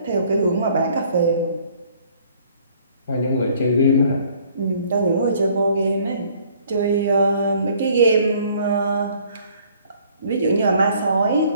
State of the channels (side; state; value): both; inverted; correlation -0.59